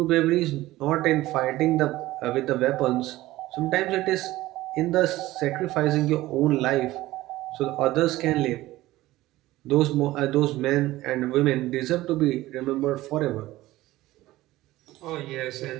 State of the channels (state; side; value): quieter; left; 17.0 dB